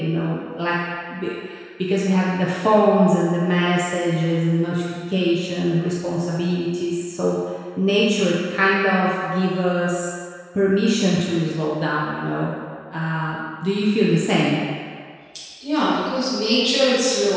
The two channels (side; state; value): both; identical; correlation 1.00